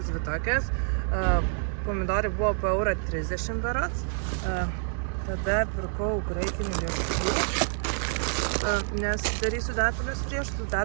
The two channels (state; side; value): silent; left; 60 dB below the other